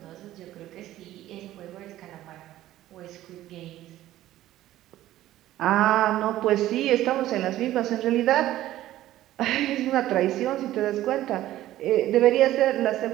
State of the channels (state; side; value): quieter; left; 14.3 dB